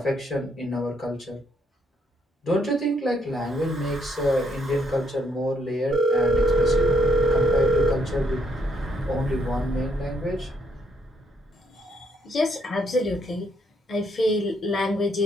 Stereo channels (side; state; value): both; normal; correlation 0.73